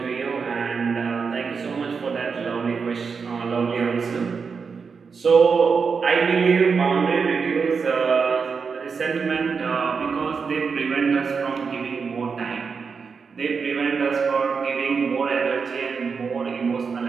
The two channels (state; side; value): quieter; left; 5.5 dB